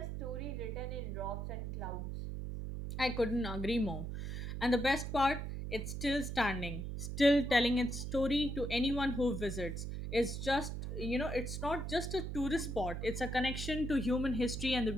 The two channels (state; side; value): noise; right; hum, 5 dB below the sound